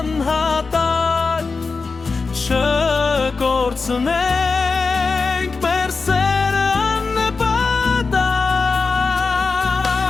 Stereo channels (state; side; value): quieter; right; 4.3 dB